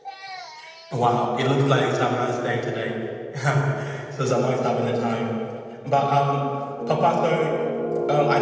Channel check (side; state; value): both; identical; correlation 1.00